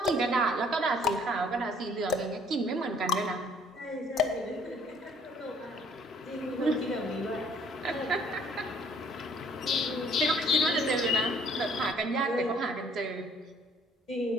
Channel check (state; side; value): normal; both; correlation 0.59